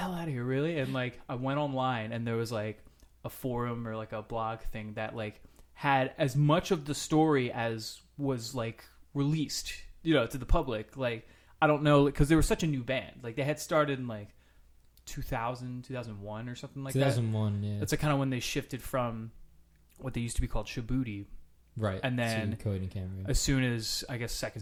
out of here, really? And like I went online and there was like a forum or like a blog thing that like had as much of the story as was like released, you know, to the public. Like I don't know, because they were such a new band. Like they had started in like 2000, 2001 or something like 2001, yeah. That's like kind of when they shifted from what they used to be called Shaboody. Right. And then Coheed Cambria. As soon as I guess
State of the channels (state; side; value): identical; both; correlation 1.00